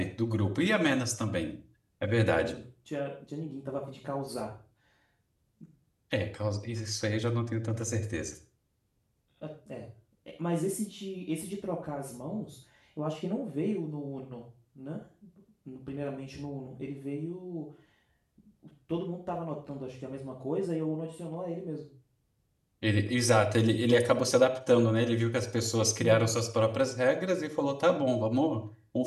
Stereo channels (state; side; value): identical; both; correlation 1.00